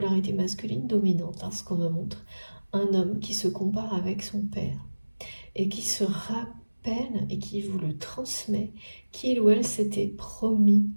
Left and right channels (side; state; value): both; inverted; correlation -1.00